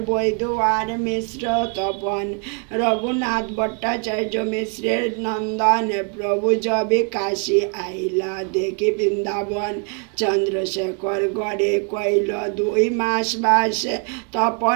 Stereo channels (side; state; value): left; quieter; 39.5 dB